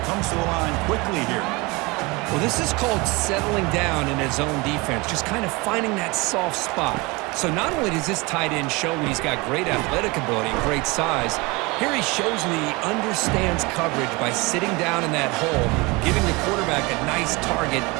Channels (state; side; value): quieter; left; 25.3 dB